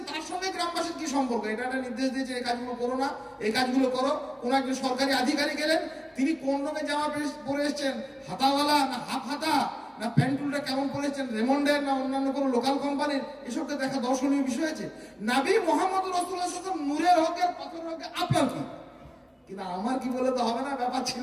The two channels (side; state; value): both; identical; correlation 1.00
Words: তার সঙ্গে গ্রামবাসীর কি সম্পর্ক? এটা একটা নির্দেশ দিয়েছে এই কাজগুলো করো না, এই কাজগুলো করো। কোন একজন সরকারি আধিকারিক এলেন, তিনি কোন রঙের জামা পরে এসেছেন, হাতাওয়ালা না হাফ হাতা, না প্যান্টুলটা কেমন পরেছেন, রেমন্ডের না অন্যান্য কোনো লোকাল কোম্পানির, এসবকে দেখা দর্শনীয় বিষয় আছে। নবী মুহাম্মদ রাসূলুল্লাহ সাল্লাল্লাহু আলাইহি ওয়াসাল্লাম নূরের হকের পাথরের হকে, আপনার কি? কিন্তু আমার কি বলে তো হবে না, ব্যাপার